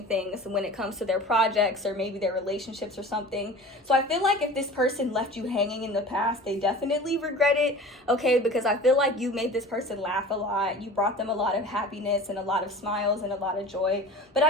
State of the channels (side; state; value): both; normal; correlation 0.38